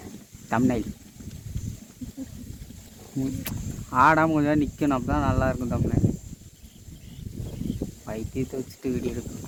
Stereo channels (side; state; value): both; identical; correlation 1.00